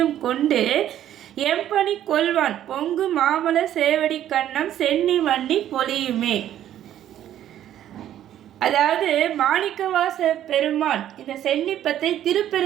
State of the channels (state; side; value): quieter; left; 11.5 dB